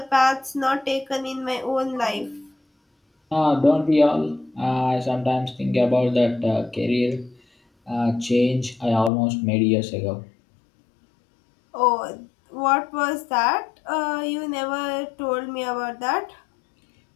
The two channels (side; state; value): right; drops out; at 9.1 s